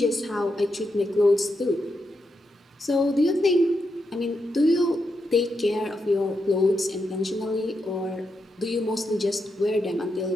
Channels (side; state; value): both; normal; correlation 0.84